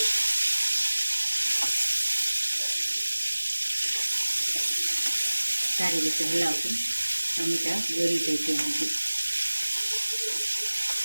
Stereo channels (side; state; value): both; inverted; correlation -1.00